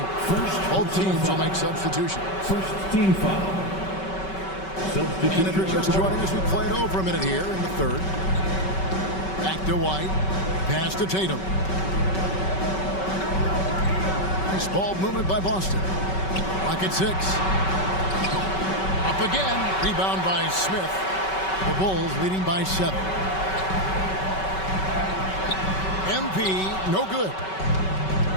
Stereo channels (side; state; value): right; late; 5.3 ms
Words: Both teams will make substitution. First team foul. And if you're just joining us, we played over a minute here in the third. Back to White. Pass to Tatum. Nice ball movement by Boston. Clock at 6. Up again. Rebound by Smith. The Bulls leading by 7. MP, no good.